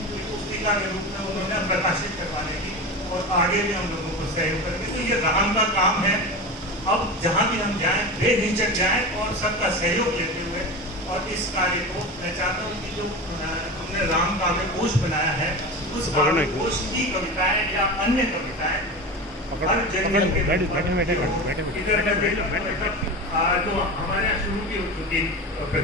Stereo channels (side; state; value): both; normal; correlation 0.27